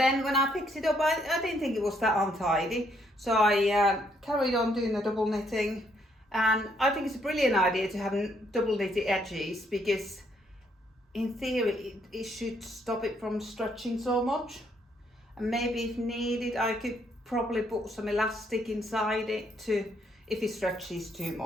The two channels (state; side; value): normal; both; correlation 0.71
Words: when I picked it up, I didn't think it was that untidy, so I carried on doing the double knitting. And I think it's a brilliant idea to have double knitted edges, because in theory it should stop it from stretching so much. And maybe if needed, I could probably put some elastic inside it to, if it stretches too